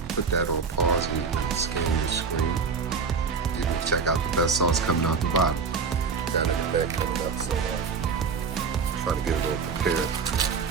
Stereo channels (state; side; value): quieter; left; 5.5 dB